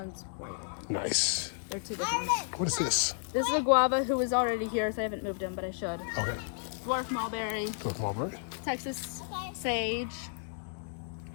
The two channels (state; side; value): silent; right; digital silence